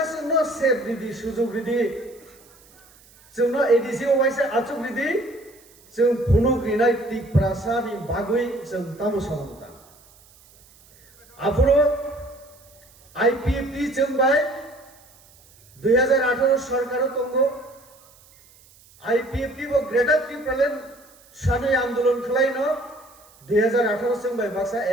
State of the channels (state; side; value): noise; right; hiss, 27 dB below the sound